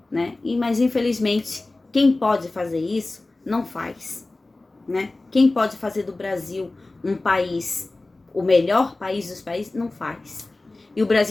né? Mas infelizmente, quem pode fazer isso, não faz, né? Quem pode fazer do Brasil um país, o melhor país dos países, não faz. E o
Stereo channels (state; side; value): quieter; right; 3.0 dB